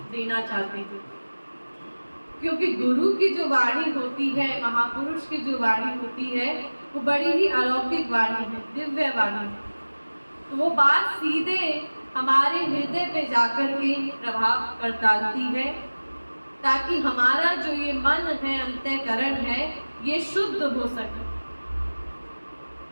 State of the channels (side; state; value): both; inverted; correlation -1.00